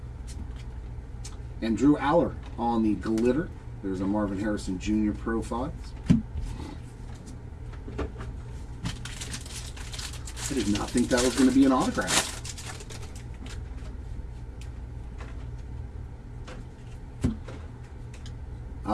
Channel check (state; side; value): identical; both; correlation 1.00